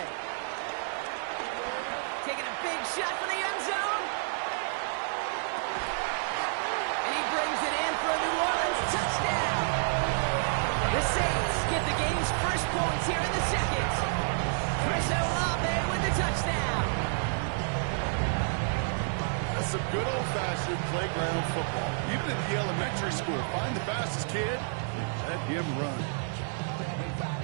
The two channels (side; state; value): left; silent; 58 dB below the other